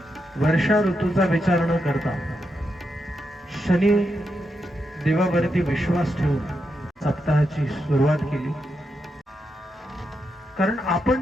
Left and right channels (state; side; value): normal; both; correlation 0.84